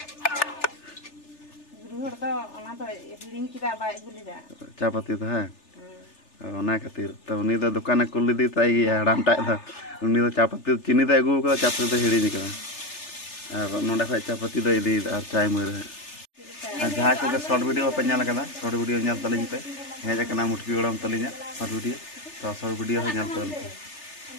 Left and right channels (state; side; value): late; right; 3.3 ms